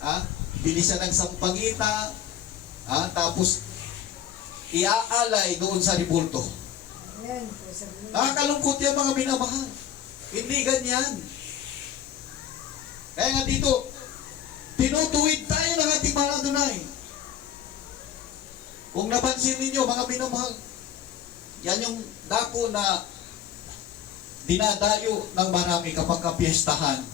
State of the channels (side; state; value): right; quieter; 9.8 dB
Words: Bili siya ng sampagita, tapos iaalay doon sa ribulto. Kalungkot yan mga minamahal. Hindi ganyan. Kaya nga dito, tinutuwid tayo ng ating mahal Adonai. Kung napansin ninyo, mga minamahal, yan yung dako na dinadayo ng marami kapag kapiestahan.